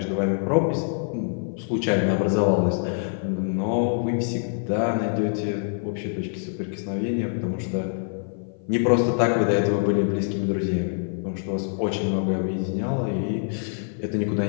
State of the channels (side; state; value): right; silent; 55 dB below the other